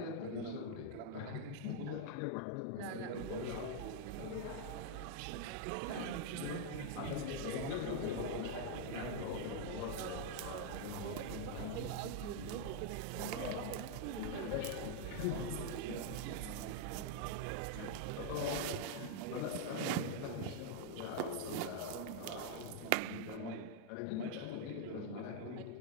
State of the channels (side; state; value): both; different; correlation 0.00